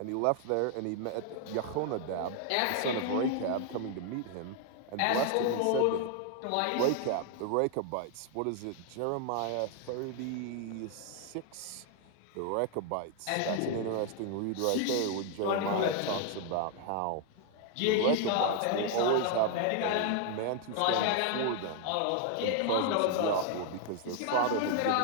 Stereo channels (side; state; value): both; different; correlation 0.00